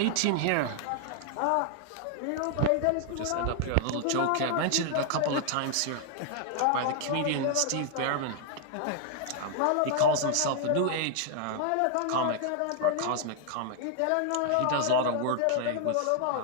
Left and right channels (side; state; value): both; different; correlation 0.00